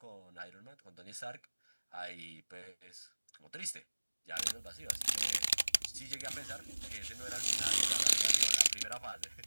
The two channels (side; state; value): both; inverted; correlation -1.00